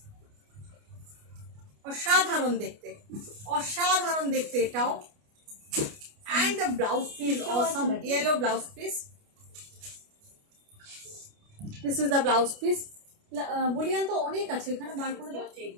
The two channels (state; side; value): late; left; 29 ms